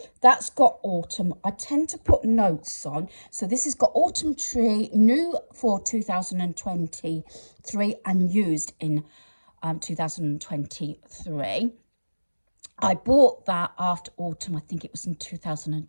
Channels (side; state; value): both; inverted; correlation -1.00